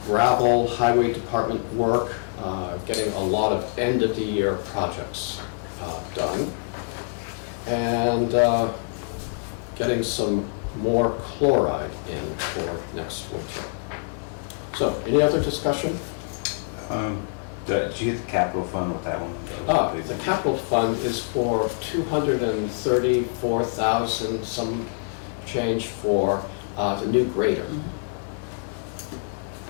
Gravel, highway department work, getting a lot of end of the year projects done, and getting some more chloride in for next winter. So, any other discussion? Did you get the capital fund with that one? The capital fund is for $234,000 some change for the new grader.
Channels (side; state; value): right; silent; 61 dB below the other